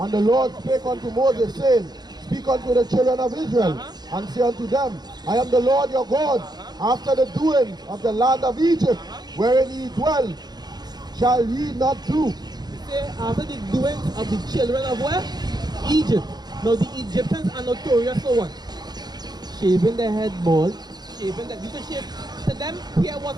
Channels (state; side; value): late; left; 0.20 ms